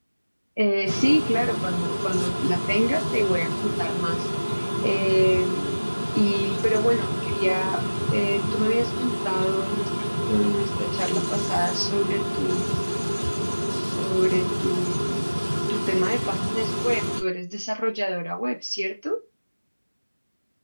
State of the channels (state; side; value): inverted; both; correlation -1.00